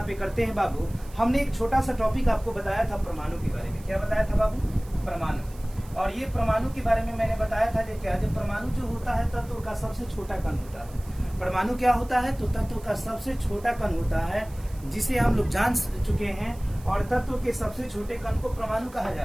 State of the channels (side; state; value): right; noise; hiss, 23 dB below the sound